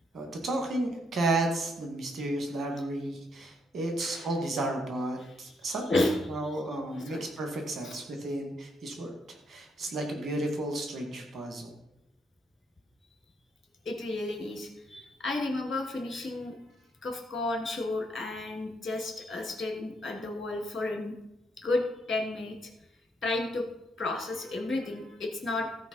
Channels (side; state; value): both; normal; correlation 0.74